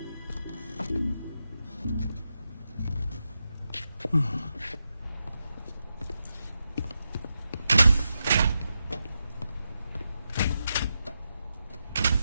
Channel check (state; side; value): inverted; both; correlation -0.87